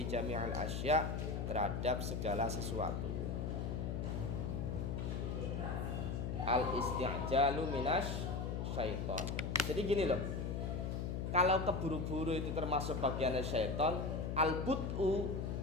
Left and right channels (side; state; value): left; noise; hum, 2 dB below the sound